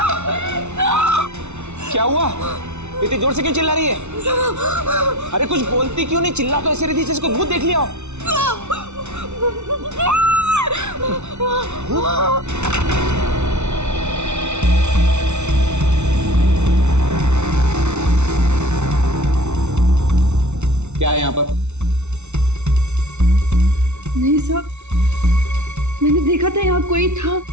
क्या हुआ? इतनी जोर से क्यों चिल्ला रही है? अरे कुछ बोलती क्यों नहीं? चिल्ला तो ऐसे रही थी जैसे कोई भूत देख लिया हो। क्या है यहाँ पर? नहीं साहब, मैंने देखा था यहाँ कोई था।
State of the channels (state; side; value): late; left; 0.82 ms